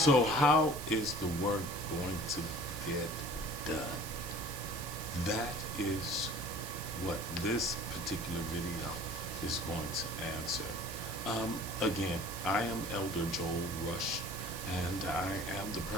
how is the work going to get done? That is what this particular video is going to answer. Again, I am Elder Joel Rush, and I am the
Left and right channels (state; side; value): noise; right; hiss, 10 dB below the sound